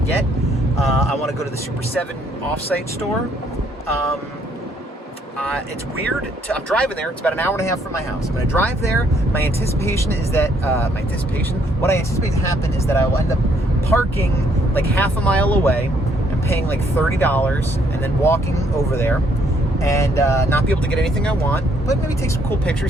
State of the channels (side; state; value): both; normal; correlation 0.68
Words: I want to go to the Super 7 offsite store. It's weird. I'm driving there. It's about an hour and a half from my house. I'm going to drive there. My anticipation is that, what I anticipate to happen is that I will end up parking like half a mile away and paying like $30 and then walking over there and not be able to get anything I want, but maybe take some cool